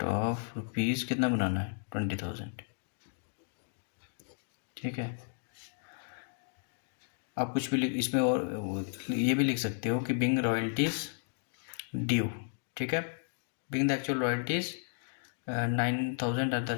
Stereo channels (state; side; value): silent; right; digital silence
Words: of rupees, कितना बनाना है 20,000। ठीक है, आप कुछ भी इसमें और ये भी लिख सकते हो कि बिंग रॉयल्टीज ड्यू। ठीक है, being the actual royalties 9,000 at the